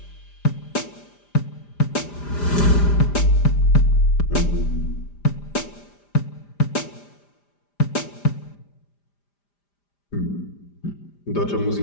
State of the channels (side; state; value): right; late; 5.0 ms